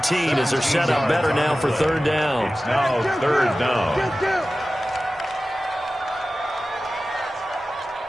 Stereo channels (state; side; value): normal; both; correlation 0.95